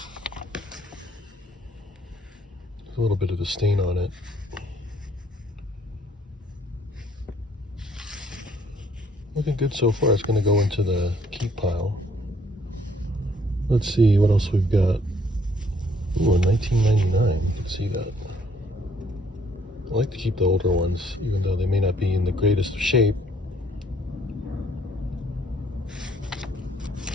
There's a little bit of a stain on it. Looking good so far. It's going to go into the keep pile. Let's see what else we've got. Ooh, 1999. You can see that. I like to keep the older ones, even though they may not be in the greatest of shape.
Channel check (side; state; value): both; normal; correlation 0.64